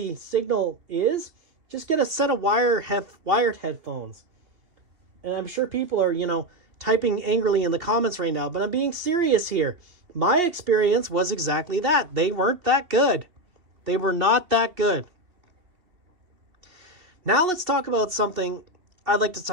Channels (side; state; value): left; late; 2.7 ms